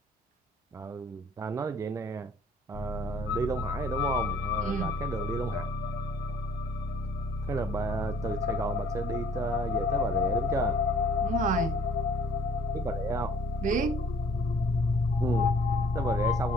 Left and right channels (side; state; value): both; normal; correlation 0.56